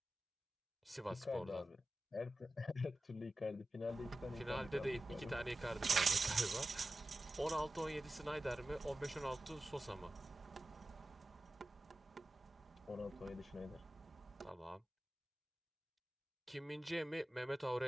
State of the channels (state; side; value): normal; both; correlation 0.94